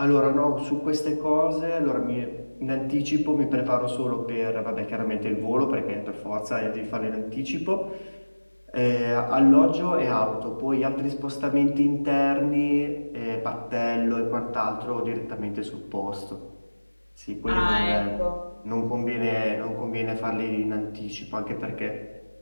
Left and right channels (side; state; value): both; inverted; correlation -1.00